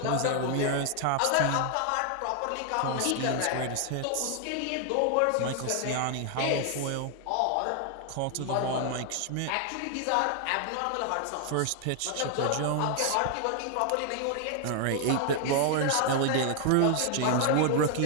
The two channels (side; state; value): both; different; correlation 0.00